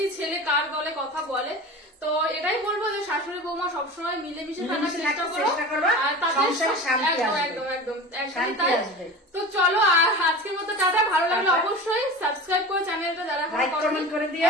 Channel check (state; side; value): normal; both; correlation 0.33